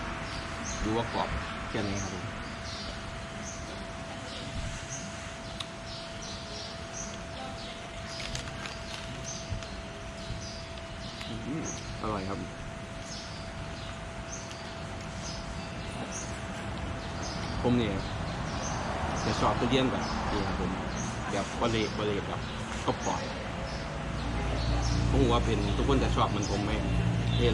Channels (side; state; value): both; identical; correlation 1.00